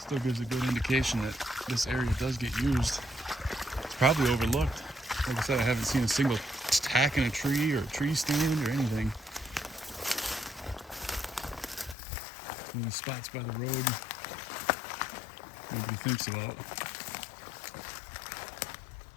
gives a good indication that this area does get used. It's probably overlooked. Like I said, I haven't seen a single tack in a tree or a tree stand or anything. One of these spots by the road nobody thinks about.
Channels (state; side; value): drops out; right; at 12.0 s